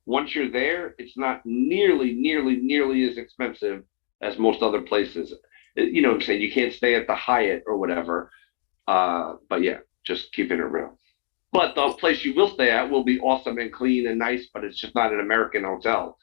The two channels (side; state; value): right; silent; digital silence